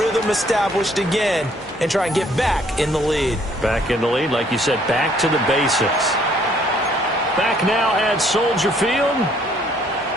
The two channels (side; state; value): both; normal; correlation 0.63